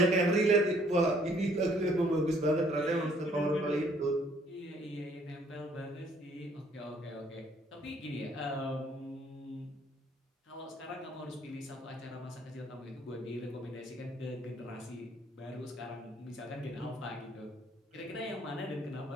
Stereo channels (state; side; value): normal; both; correlation 0.62